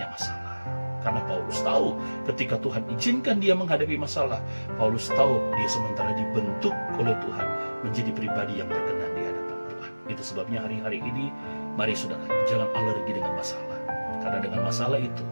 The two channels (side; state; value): both; inverted; correlation -1.00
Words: masalah. Karena Paulus tahu ketika Tuhan izinkan dia menghadapi masalah, Paulus tahu dia sementara dibentuk oleh Tuhan menjadi pribadi yang berkenan di hadapan Tuhan. Itu sebabnya hari-hari ini, mari saudara, jangan alergi dengan masalah. Karena dengan masalah itu,